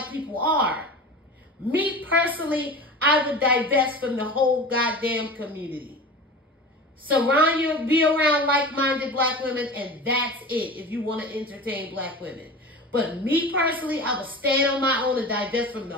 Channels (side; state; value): both; normal; correlation 0.33